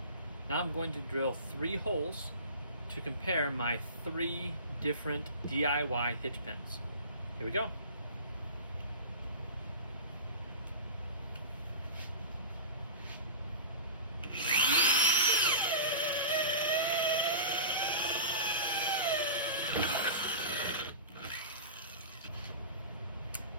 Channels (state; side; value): inverted; both; correlation -0.32